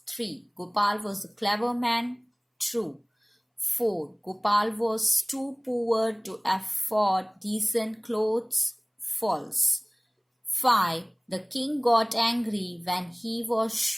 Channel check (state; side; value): identical; both; correlation 1.00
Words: 3. Gopal was a clever man. True. 4. Gopal was too poor to afford decent clothes. False. 5. The king got angry when he was